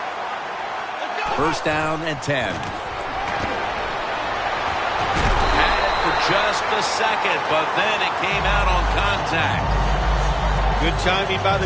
First down and 10. Had it for just a second, but then it came out on contact. Good timing by the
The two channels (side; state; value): both; identical; correlation 1.00